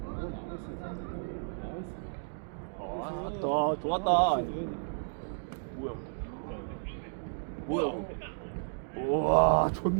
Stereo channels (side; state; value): left; silent; digital silence